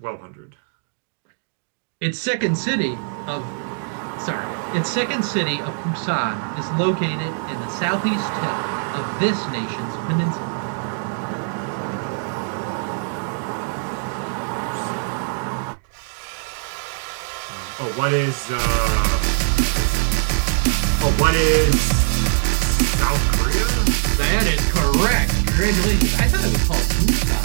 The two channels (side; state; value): left; silent; digital silence